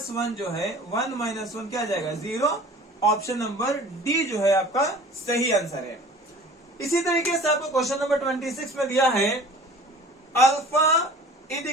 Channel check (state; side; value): normal; both; correlation 0.45